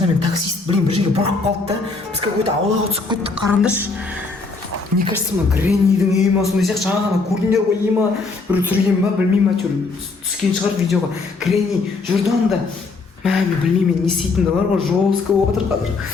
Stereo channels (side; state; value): right; quieter; 4.0 dB